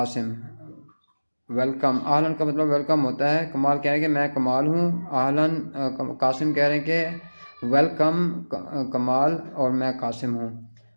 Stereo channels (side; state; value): both; inverted; correlation -1.00